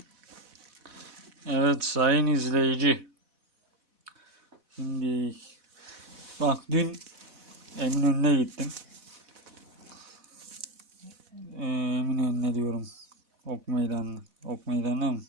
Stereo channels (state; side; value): late; left; 4.1 ms